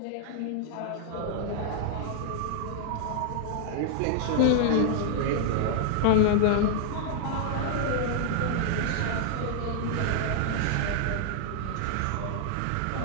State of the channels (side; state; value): both; different; correlation -0.01